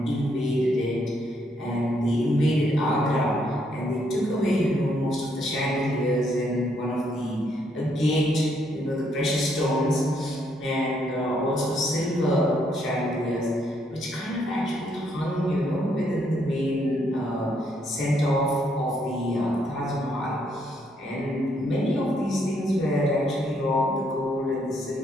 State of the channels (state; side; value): normal; both; correlation 0.73